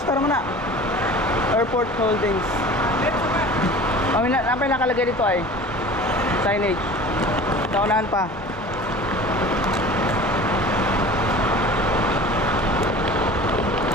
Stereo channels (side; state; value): both; normal; correlation 0.40